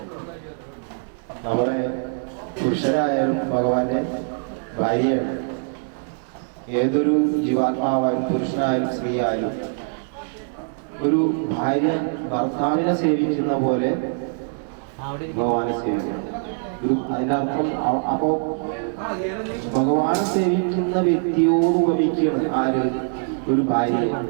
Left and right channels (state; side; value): silent; left; 63 dB below the other